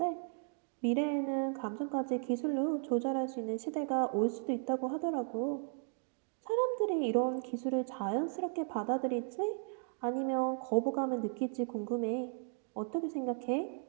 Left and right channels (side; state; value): left; silent; 54 dB below the other